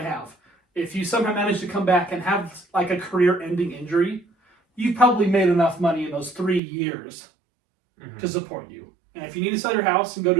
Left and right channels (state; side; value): drops out; left; at 6.6 s